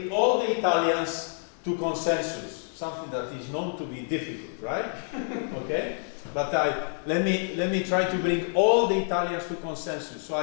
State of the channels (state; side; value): silent; right; 60 dB below the other